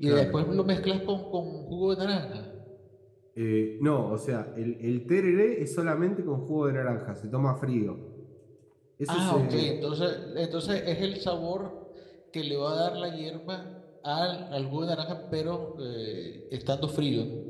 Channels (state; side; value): identical; both; correlation 1.00